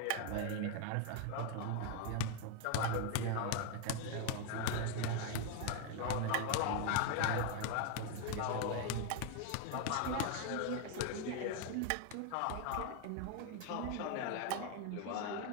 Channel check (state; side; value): different; both; correlation 0.01